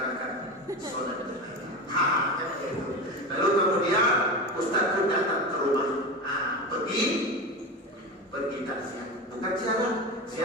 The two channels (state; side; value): normal; both; correlation 0.24